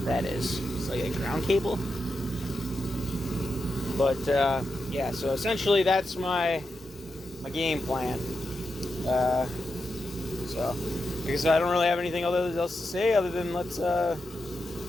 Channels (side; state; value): both; normal; correlation 0.87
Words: that is. It's like a ground cable. But yeah, so essentially that's my game plan. So like I said, I don't really have anything else to say other than let the